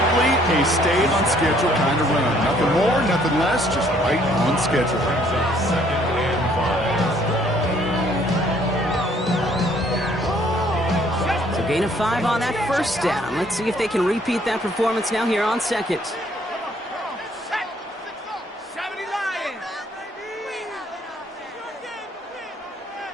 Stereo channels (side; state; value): both; normal; correlation 0.63